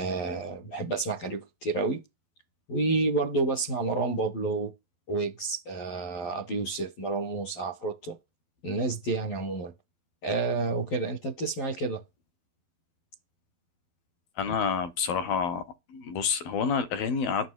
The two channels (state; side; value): late; right; 12 ms